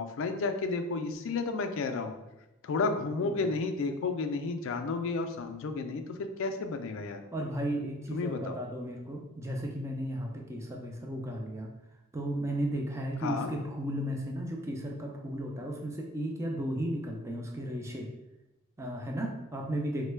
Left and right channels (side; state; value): both; normal; correlation 0.44